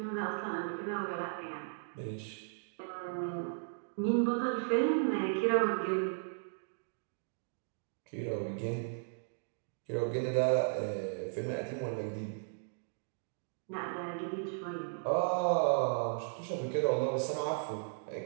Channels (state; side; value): silent; left; digital silence